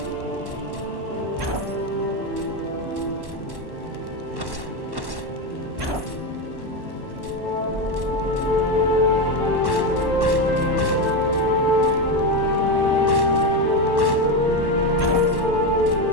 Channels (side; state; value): left; late; 1.1 ms